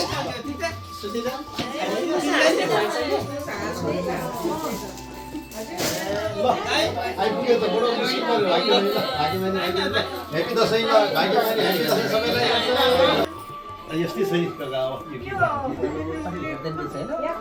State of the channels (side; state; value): both; identical; correlation 1.00